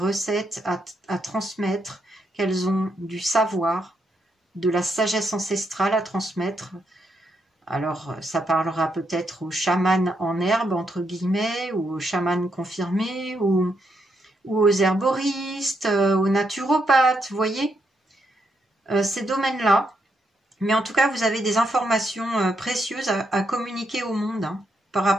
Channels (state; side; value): normal; both; correlation 0.79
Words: à transmettre, qu'elles ont du savoir, de la sagesse ancestrale à transmettre. Alors, ça parlera peut-être aux chamans en herbe, entre guillemets, ou aux chamans confirmés, ou aux herboristes, aux naturopathes, vous voyez, ces domaines-là. Mais en tout cas, vous avez des informations précieuses à communiquer au monde hein, par